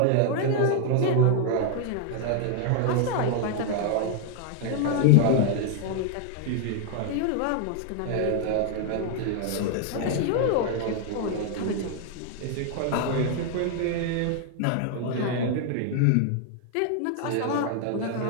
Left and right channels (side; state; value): both; different; correlation 0.00